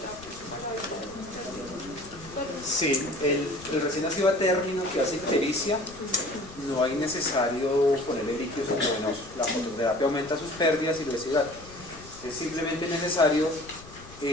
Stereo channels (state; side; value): noise; left; rumble, 19 dB below the sound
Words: para evitar pérdidas. Sí, el recién nacido a término que hace ictericia, no hay necesario ponerle líquidos endovenosos. La fototerapia aumenta sus pérdidas y lo deshidrata. Es simplemente necesario